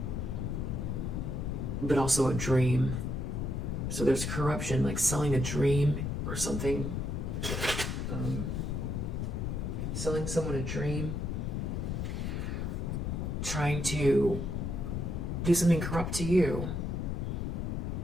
but also a dream. So there's corruption, like selling a dream or something. Selling someone a dream. Trying to do something corrupt to you.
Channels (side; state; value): left; noise; rumble, 1 dB below the sound